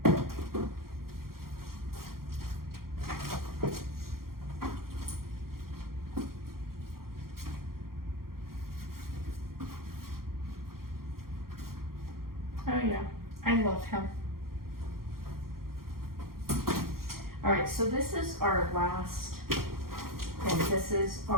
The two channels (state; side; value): late; left; 0.93 ms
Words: Oh yeah, I love him. All right, so this is our last, and this is